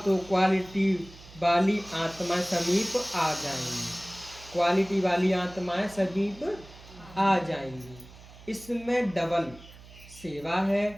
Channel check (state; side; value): noise; right; hum, 20 dB below the sound